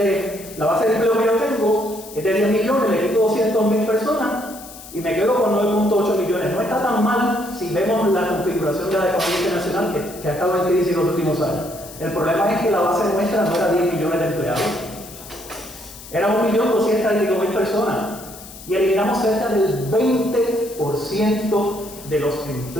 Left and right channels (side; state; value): left; noise; hiss, 16 dB below the sound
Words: que yo tengo es de 10 millones, le quito 200.000 personas y me quedo con 9.8 millones. No está tan mal si vemos la configuración de la economía internacional que ha estado en crisis en los últimos años. El problema es que la base nuestra no era 10 millones de empleados, era 1.200.000 personas. Y eliminamos cerca del 20% de los